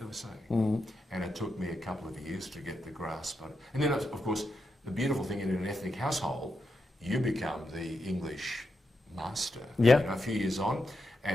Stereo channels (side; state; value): both; normal; correlation 0.85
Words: they were saying. And it took me a couple of years to get the grasp on it. And then, of course, the beautiful thing in an ethnic household, you become the English master. Yeah. A few years on,